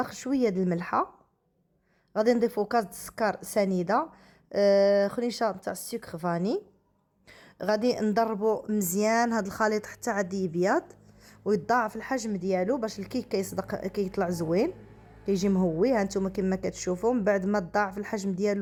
شويه د الملحه، غادي نضيفو كاس د السكر سنيده، خنيشه تاع السكر فاني. غادي نضربو مزيان هاد الخليط حتى عاد يبيض ويتضاعف الحجم ديالو باش الكيك كيصدق كيطلع زوين، كيجي مهوي. ها نتوما كما كتشوفوا من بعد ما تضاعف الحجم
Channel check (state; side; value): identical; both; correlation 1.00